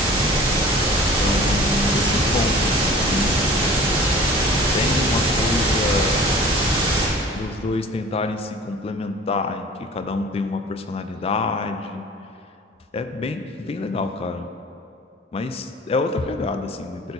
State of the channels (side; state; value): both; normal; correlation 0.44